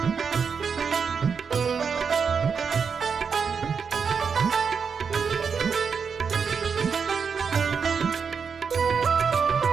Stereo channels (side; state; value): left; quieter; 6.0 dB